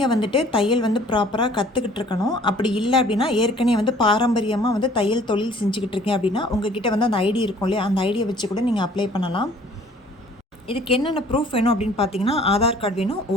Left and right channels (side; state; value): both; normal; correlation 0.54